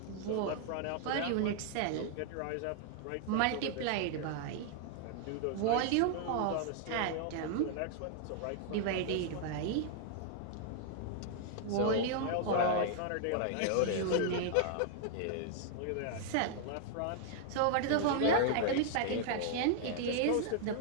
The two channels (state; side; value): different; both; correlation 0.00